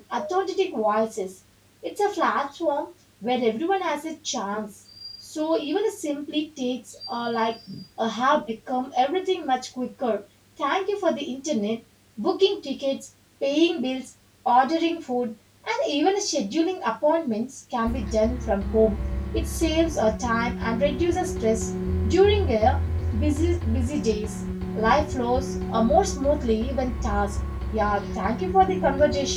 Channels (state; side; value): identical; both; correlation 1.00